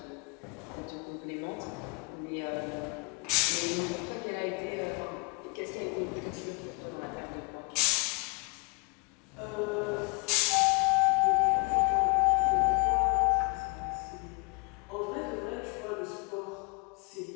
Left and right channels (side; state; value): right; quieter; 32.3 dB